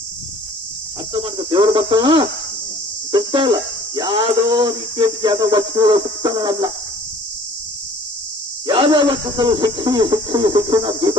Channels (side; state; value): both; normal; correlation 0.52